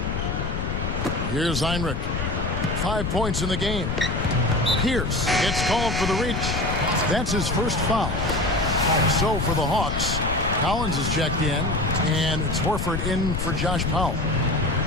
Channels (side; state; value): left; noise; rumble, 2 dB below the sound